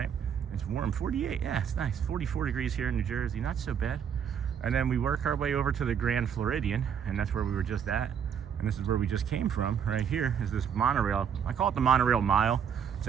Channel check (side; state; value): left; quieter; 7.9 dB